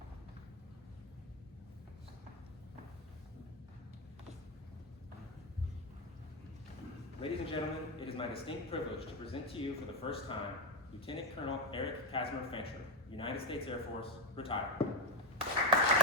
Ladies and gentlemen, it is my distinct privilege to present to you for the first time Lieutenant Colonel Eric Casimir Fancher, United States Air Force, retired.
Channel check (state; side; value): normal; both; correlation 0.09